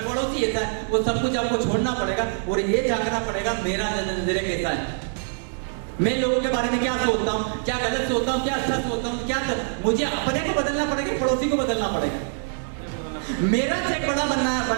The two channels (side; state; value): left; silent; digital silence